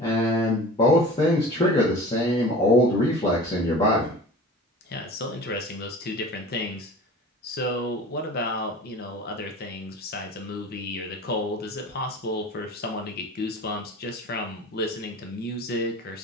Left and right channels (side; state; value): both; normal; correlation 0.39